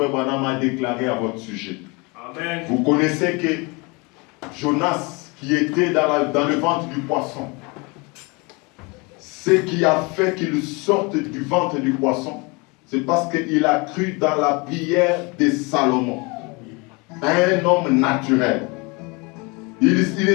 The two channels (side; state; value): right; quieter; 28.1 dB